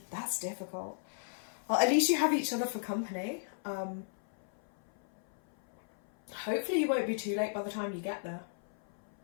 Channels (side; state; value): right; silent; 54 dB below the other